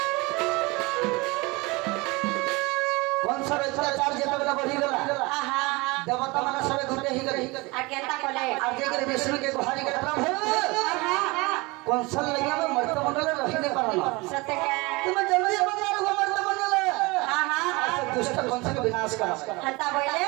देवता माने सबे घुटे ही गई आ केनता कोले आ जे के विष्णु के गुहारी के प्रभु कौशल लगे में मर्त मंडल रहिने परना सत्य के तुम जल्दी बंगार हो मर्त मंडल हां हां दुष्ट कौन से विनाश कर हता बोले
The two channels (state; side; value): quieter; left; 24.7 dB